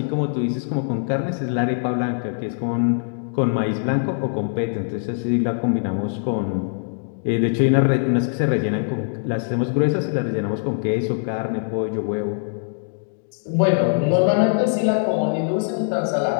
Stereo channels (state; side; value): silent; right; digital silence